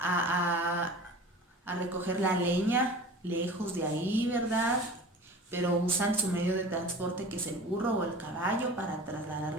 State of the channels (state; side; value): normal; both; correlation 0.39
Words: recoger la leña lejos de ahí, ¿verdad? Pero usan su medio de transporte, que es el burro o el caballo, para trasladar